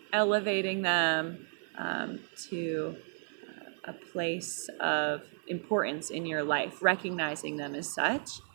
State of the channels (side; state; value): left; silent; 56 dB below the other